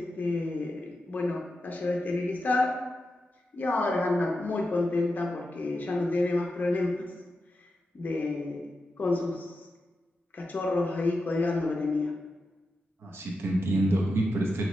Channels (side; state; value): both; normal; correlation 0.89